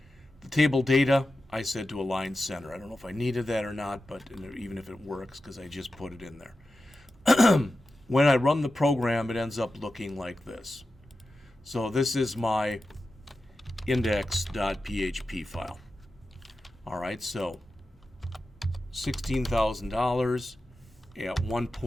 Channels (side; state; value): both; normal; correlation 0.92